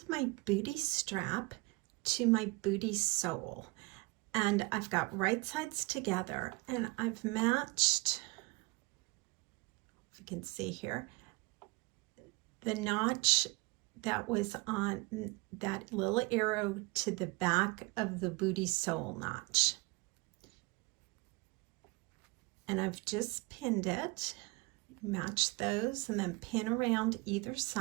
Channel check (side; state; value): left; quieter; 25.9 dB